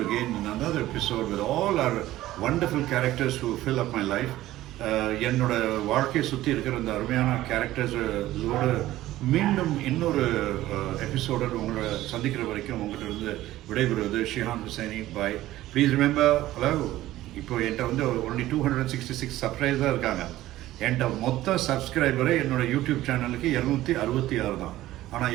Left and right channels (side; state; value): left; quieter; 15.3 dB